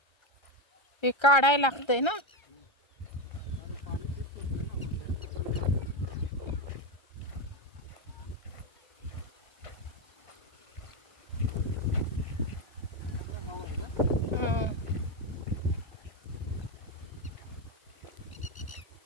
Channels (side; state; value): right; late; 1.3 ms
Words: हे काढायला लागतंय ना. आणि पाणी तेच पडतं ना.